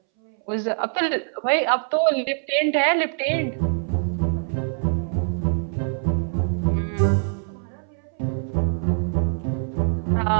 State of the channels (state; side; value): silent; left; 63 dB below the other